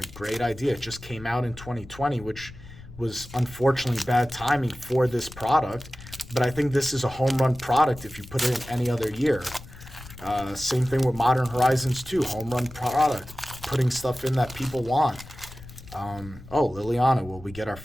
great idea. It just came out in 2020, which was unfortunately bad timing for this product. But I think this is a home run product if you put it in any other year. Same thing with Modern Horizons 2, home run product, putting stuff in that people want. Liliana, will we get our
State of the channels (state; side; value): noise; left; rumble, 17 dB below the sound